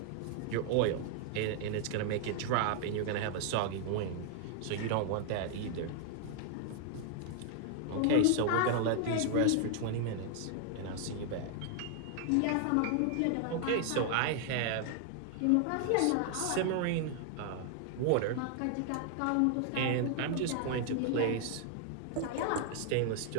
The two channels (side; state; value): both; different; correlation 0.00